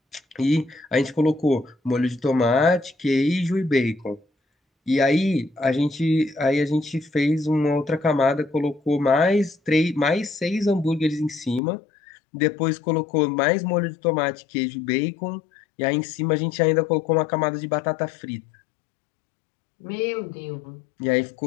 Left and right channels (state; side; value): drops out; right; at 11.6 s